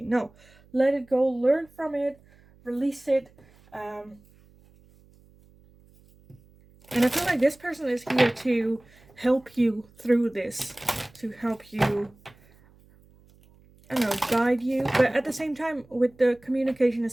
No, let it go, learn from it, release it. And I feel like this person is here to help you through this, to help you, I don't know, guide you. But at the same time, with the communication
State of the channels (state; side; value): noise; right; hum, 28 dB below the sound